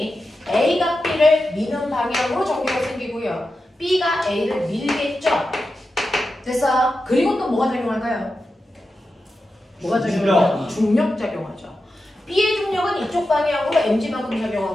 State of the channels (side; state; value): both; normal; correlation 0.90